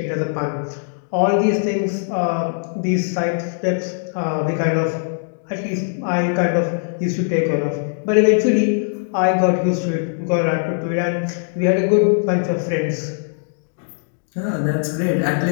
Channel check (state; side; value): silent; right; digital silence